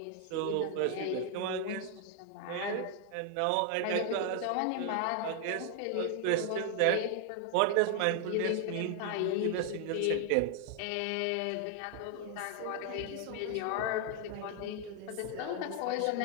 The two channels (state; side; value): different; both; correlation 0.00